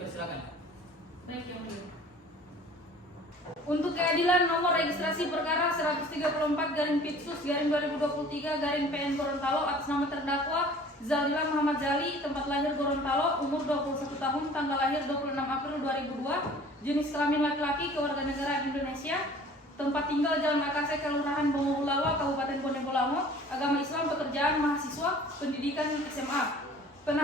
Baik yang mulia. Untuk keadilan nomor registrasi perkara 134/Pipsus/2023/PN Gorontalo atas nama terdakwa Zaldila Muhammad Jali, tempat lahir Gorontalo, umur 21 tahun, tanggal lahir 26 April 2002, jenis kelamin laki-laki, kewarganegaraan Indonesia, tempat tinggal Jalan Akase, Kelurahan Bongowulawa, Kabupaten Bone Bolango, agama Islam, pekerjaan mahasiswa, pendidikan SMA.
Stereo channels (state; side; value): normal; both; correlation 0.48